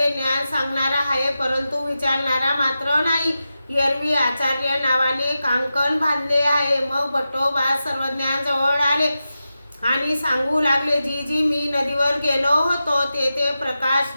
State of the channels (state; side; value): inverted; both; correlation -0.91